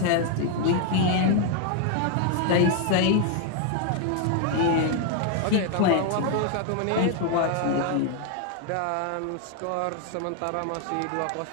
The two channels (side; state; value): both; different; correlation 0.00